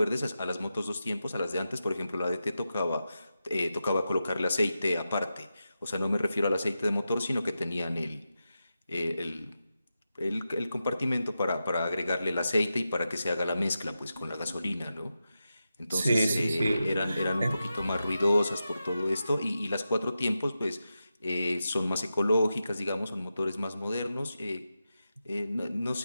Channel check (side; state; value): both; inverted; correlation -0.90